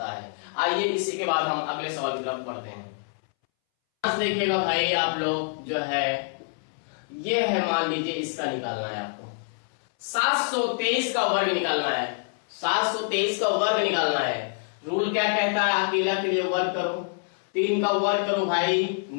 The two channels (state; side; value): silent; right; 61 dB below the other